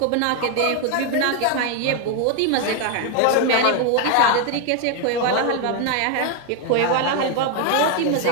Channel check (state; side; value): different; both; correlation 0.01